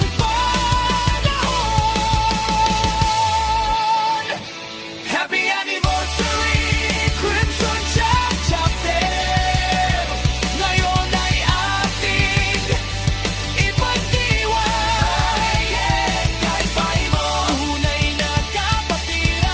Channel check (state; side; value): identical; both; correlation 1.00